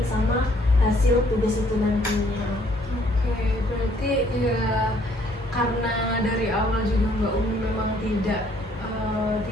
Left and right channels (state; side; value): normal; both; correlation 0.64